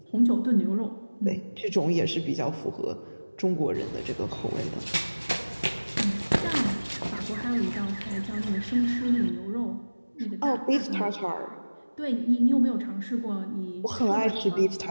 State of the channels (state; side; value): inverted; both; correlation -1.00